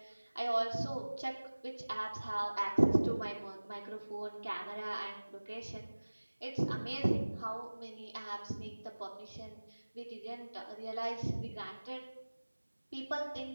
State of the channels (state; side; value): inverted; both; correlation -1.00